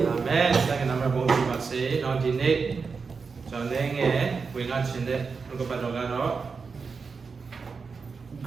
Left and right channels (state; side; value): quieter; left; 5.1 dB